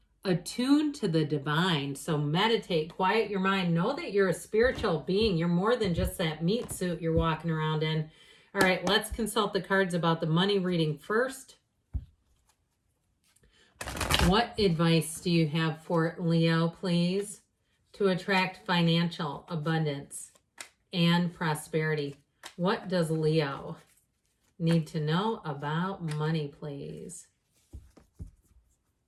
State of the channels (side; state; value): both; identical; correlation 1.00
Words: attuned to the divine. So meditate, quiet your mind. Know that you're a spiritual being. You're more than just that meat suit you're walking around in. All right, let's consult the cards about the money reading first. What advice do you have for Leo, please, to attract financial abundance and prosperity? What does Leo need to know about money, please?